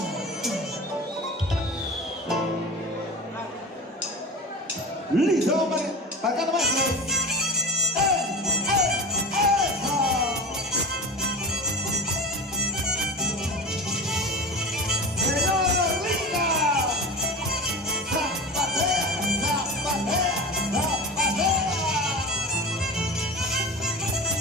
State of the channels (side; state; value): both; normal; correlation 0.30